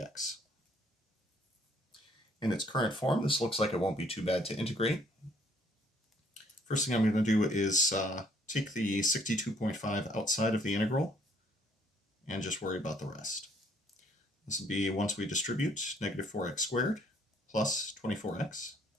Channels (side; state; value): both; normal; correlation 0.63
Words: In its current form, this looks like it won't be too bad to integrate. First thing I'm going to do is take the 62.5 outside of the integral and just worry about the rest. This will be, once we distribute, negative 4x squared plus 24x